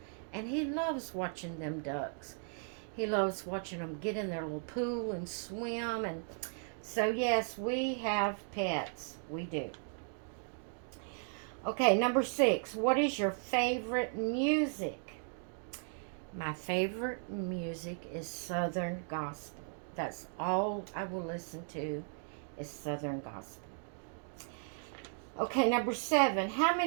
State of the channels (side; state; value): left; silent; 54 dB below the other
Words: And he loves watching them ducks. He loves watching them get in their little pool and swim. And so, yes, we have pets. We do. Okay, number 6. What is your favorite music? My favorite music is Southern gospel. That's all I will listen to is Southern gospel. Okay, number 7. How